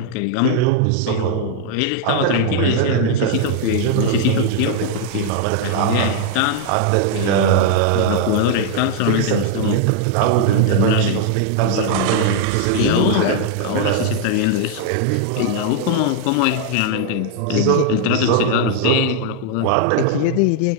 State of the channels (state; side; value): different; both; correlation 0.00